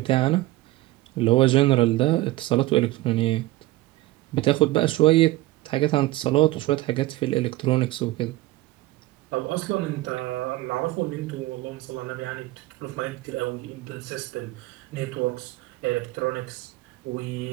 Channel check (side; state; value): left; quieter; 17.7 dB